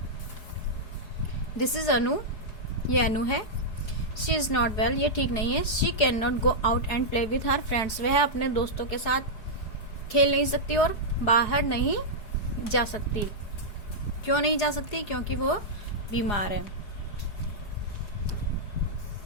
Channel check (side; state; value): right; late; 4.8 ms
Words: दिस इज अनु, ये अनु है। शी इज नॉट वेल, ये ठीक नहीं है। She can not go out and play with her friends, वह अपने दोस्तों के साथ खेल नहीं सकती और बाहर नहीं जा सकती। क्यों नहीं जा सकती? क्योंकि वो बीमार है।